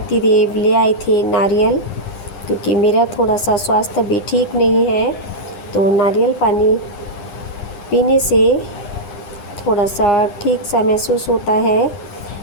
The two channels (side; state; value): right; late; 9.8 ms